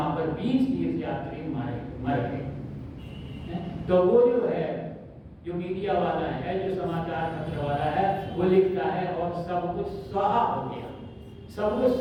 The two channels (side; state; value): both; identical; correlation 1.00